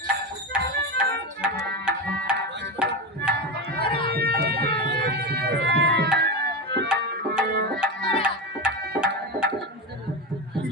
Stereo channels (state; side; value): normal; both; correlation 0.17